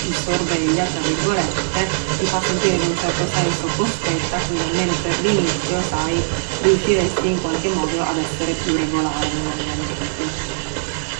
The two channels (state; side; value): silent; left; digital silence